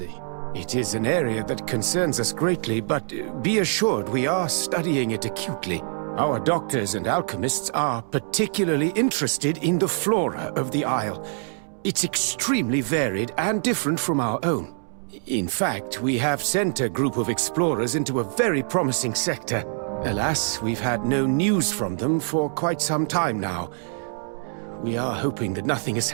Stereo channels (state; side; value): silent; left; 62 dB below the other